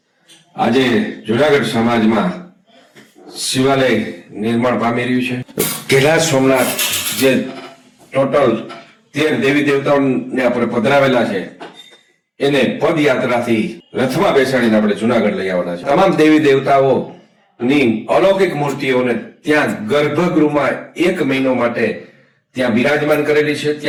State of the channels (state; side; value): identical; both; correlation 1.00